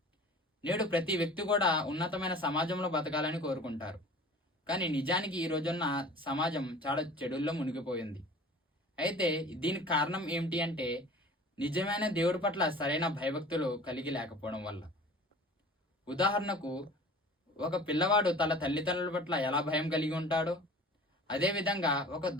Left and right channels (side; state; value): both; normal; correlation 0.43